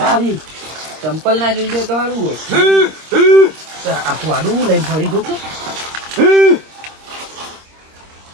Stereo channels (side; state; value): left; late; 26 ms